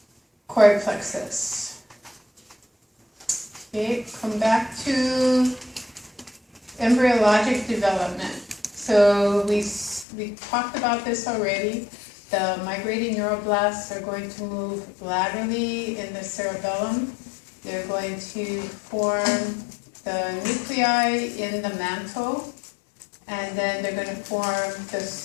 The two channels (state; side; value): drops out; right; at 10.1 s